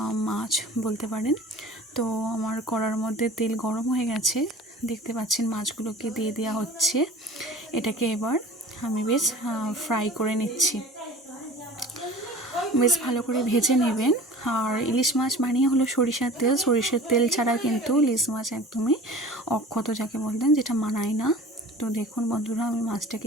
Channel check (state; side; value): normal; both; correlation 0.42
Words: মাছ বলতে পারেন। তো আমার কড়ার মধ্যে তেল গরম হয়ে গেছে, দেখতে পাচ্ছেন মাছগুলোকে দিয়ে দেওয়া হচ্ছে। এটাকে এবার আমি বেশ ফ্রাই করে নিচ্ছি, বেশ ভালো করে ভেজে নেবেন। আর ইলিশ মাছ বানিয়ে হলো সরিষার তেল ছাড়া কিন্তু ইলিশ মাছ একদমই অক্ষত যাকে বলতেন, যেটা মানায় না। তো দেখুন বন্ধুরা, আমি মাছটাকে